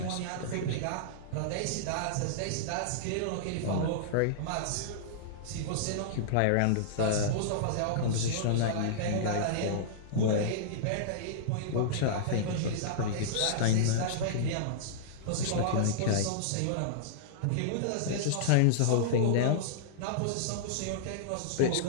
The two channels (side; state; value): both; different; correlation -0.02